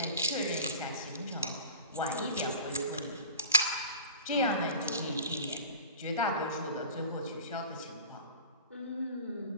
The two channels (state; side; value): inverted; both; correlation -0.39